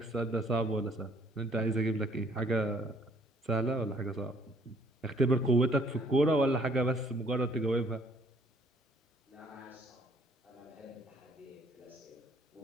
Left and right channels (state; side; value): normal; both; correlation 0.62